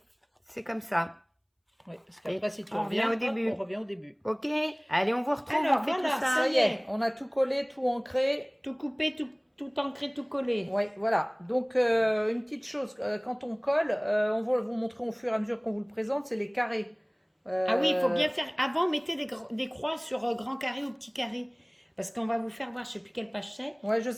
c'est comme ça. Oui, parce qu'après, si tu on revient reviens, au début. on revient au début. Ok, allez, on vous retrouve, Alors, on fait voilà, tout ça. ça y est, on a tout collé, tout ancré. Tout coupé, tout ancré, tout collé. Oui, voilà. Donc, une petite chose, quand on colle, on va vous montrer au fur et à mesure qu'on vous le présente, c'est les carrés. Ah oui, il faut bien faire. Avant, mettez des croix sur grand carré ou petit carré. Parce qu'on va vous faire voir, je ne sais plus quelle page c'est. Ouais, je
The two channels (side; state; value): both; identical; correlation 1.00